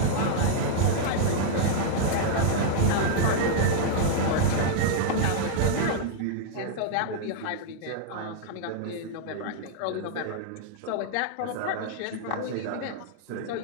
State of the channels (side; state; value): both; different; correlation -0.01